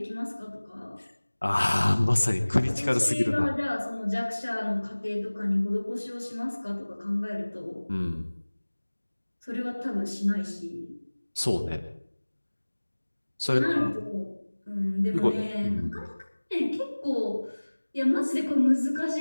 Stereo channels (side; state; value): both; inverted; correlation -1.00